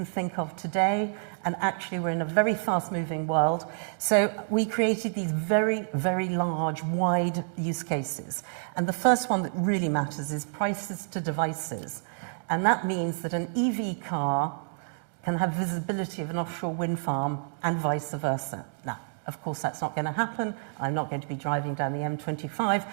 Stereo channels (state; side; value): silent; left; digital silence